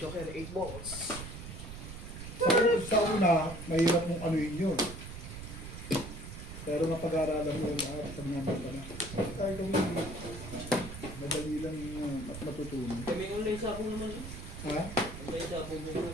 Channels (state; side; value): noise; right; rumble, 10 dB below the sound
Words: 8 balls. Sa una, mahirap mong anuin yun. Pero mapag-aaralan mo yun sa mga bata na. Kahit kung madali lang matutunan. Kami online sabong naman yun. Ha? Online sabong din na